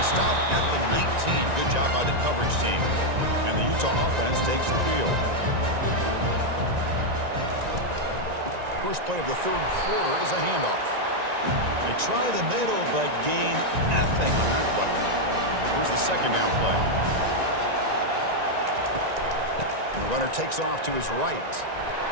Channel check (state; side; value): late; left; 1.9 ms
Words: he stopped at the 19. Good job by the coverage team. And the Utah offense takes the field. First play of the 3rd quarter is a handoff. They try the middle, but gain nothing on that play. Here's the second down play. The runner takes off to his right.